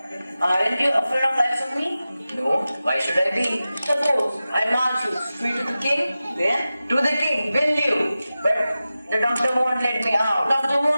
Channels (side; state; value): both; inverted; correlation -0.94